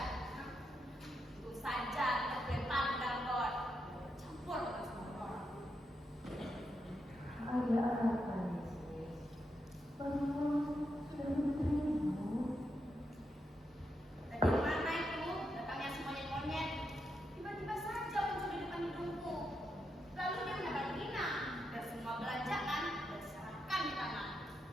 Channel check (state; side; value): normal; both; correlation 0.83